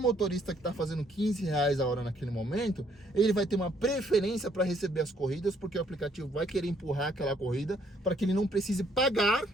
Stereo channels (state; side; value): normal; both; correlation 0.67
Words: que está fazendo R$15 a hora naquele momento, ele vai ter uma preferência para receber as corridas, porque o aplicativo vai querer empurrar aquela corrida para que ele não precise pagar,